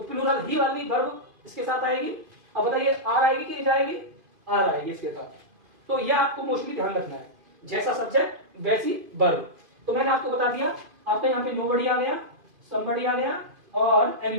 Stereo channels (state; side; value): late; left; 2.5 ms